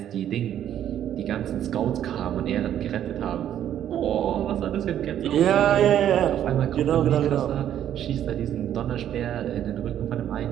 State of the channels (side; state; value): left; quieter; 10.6 dB